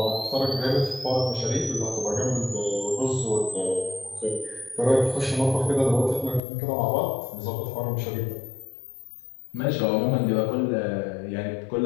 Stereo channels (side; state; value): right; drops out; at 6.4 s